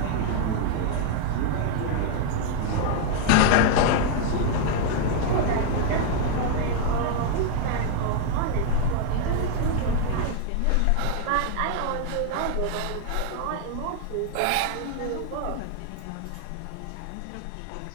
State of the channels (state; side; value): different; both; correlation 0.00